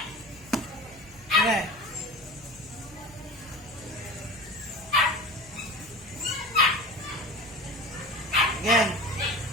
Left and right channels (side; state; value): left; noise; hum, 24 dB below the sound